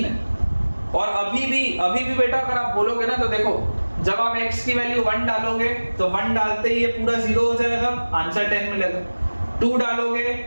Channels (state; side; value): inverted; both; correlation -1.00